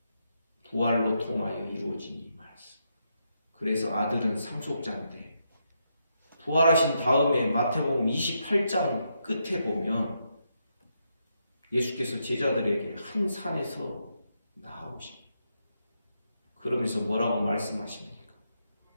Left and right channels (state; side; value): inverted; both; correlation -0.81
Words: 부활로 통하여 이루어진 이 말씀. 그래서 아들은 상속자인데, 부활하신 다음에 마태복음 28장 끝에 보면 예수께서 제자들에게 한 산에서 나오십니다. 그러면서 뭐라고 말씀하십니까?